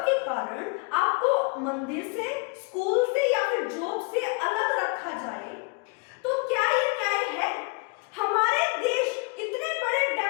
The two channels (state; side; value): quieter; right; 31.7 dB